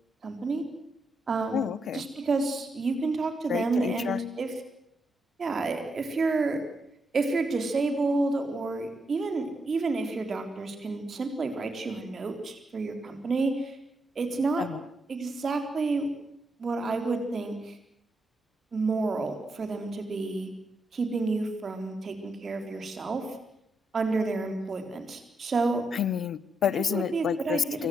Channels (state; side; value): normal; both; correlation 0.82